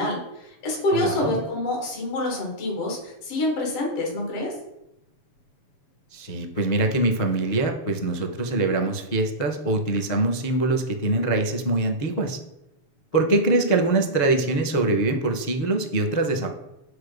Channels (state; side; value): late; right; 7.1 ms